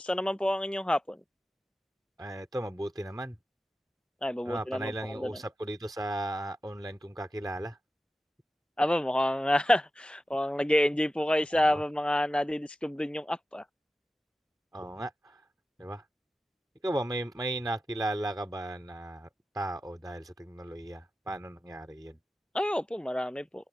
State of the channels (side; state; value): both; normal; correlation 0.93